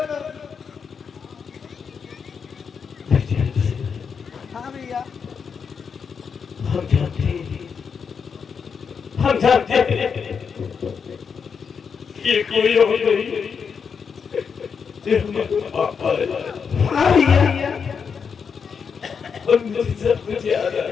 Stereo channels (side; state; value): right; quieter; 6.2 dB